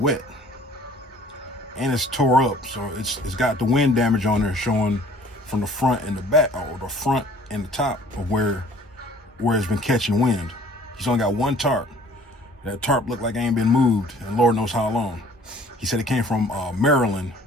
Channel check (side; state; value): both; normal; correlation 0.53